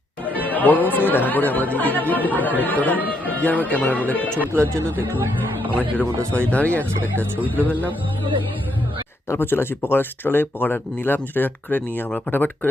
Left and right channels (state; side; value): normal; both; correlation 0.76